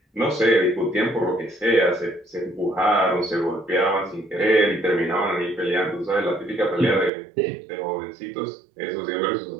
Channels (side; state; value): left; drops out; at 7.1 s